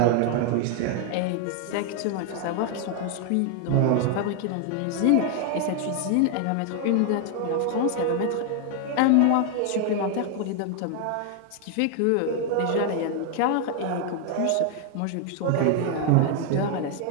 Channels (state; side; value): different; both; correlation 0.00